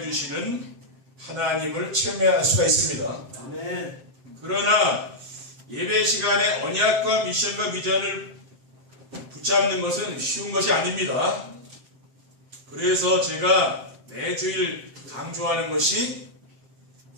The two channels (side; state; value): left; late; 7.6 ms